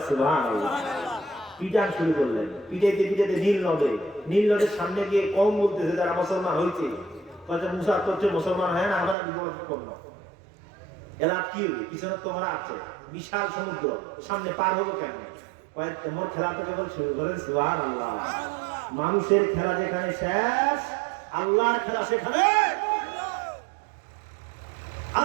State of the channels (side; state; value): left; drops out; at 9.2 s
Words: সুবহানাল্লাহ। পিটান শুরু করলেন, পিটাইতে পিটাইতে নীল নদের সামনে গিয়ে কম বলতেছে যারা মুসলমান হয়েছে, মুসা তো মুসলমান হয় না, আমরা বিপদ করবো। এলাপ কি হবে? পিছনে তোমরা আছে বিশাল সমুদ্র, সামনে পার হবো কেমন? তোমার খেলা তো কেবল শুরু করেন। সুবহানাল্লাহ। মানুষের খেলা যেখানে শেষ, আল্লাহর খেলা সেখানে।